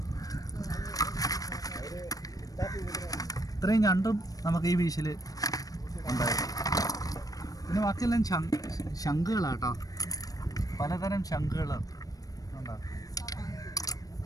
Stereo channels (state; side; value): late; right; 0.18 ms